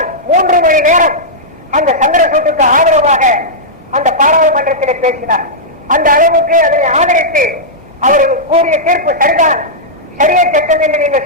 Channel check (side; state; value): both; normal; correlation -0.11